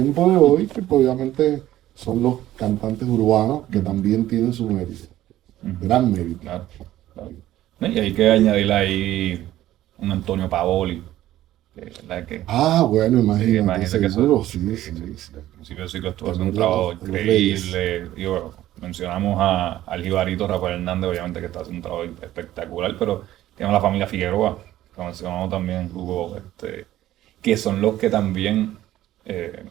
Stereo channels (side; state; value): left; quieter; 14.0 dB